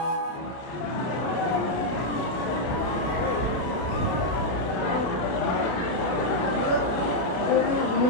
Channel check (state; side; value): late; right; 31 ms